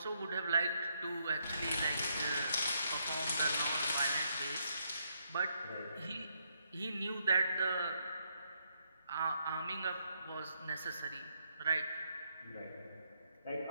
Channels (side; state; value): both; inverted; correlation -0.76